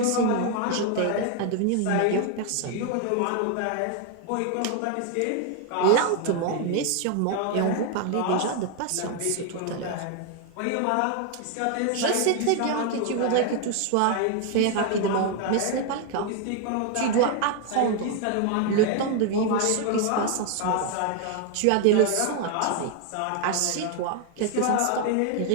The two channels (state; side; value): different; both; correlation 0.01